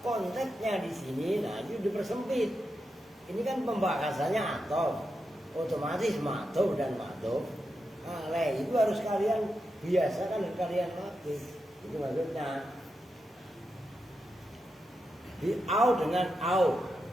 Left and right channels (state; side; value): normal; both; correlation 0.87